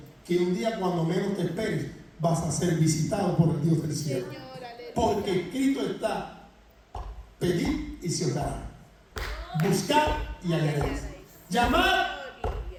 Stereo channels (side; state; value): both; identical; correlation 1.00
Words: que un día cuando menos te esperes vas a ser visitado por el Dios del cielo. Porque escrito está: pedid y se os dará, buscar y hallaréis, llamar